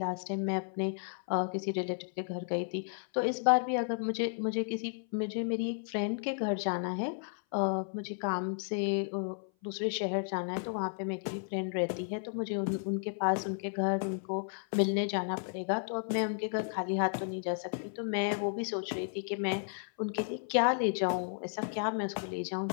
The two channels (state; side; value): silent; right; 56 dB below the other